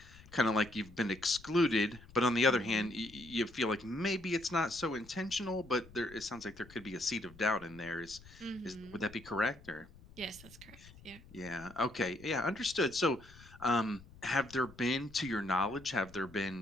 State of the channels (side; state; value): left; noise; rumble, 21 dB below the sound